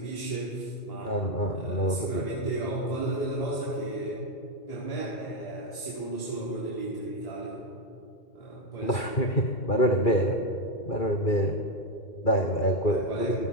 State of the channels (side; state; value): right; late; 2.4 ms